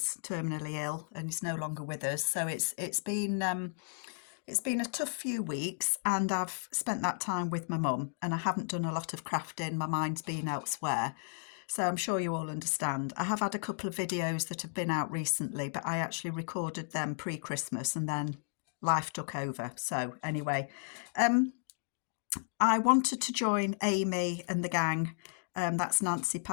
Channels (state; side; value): silent; right; digital silence